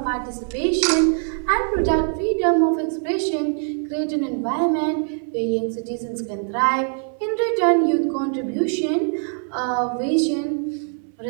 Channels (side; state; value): left; silent; 56 dB below the other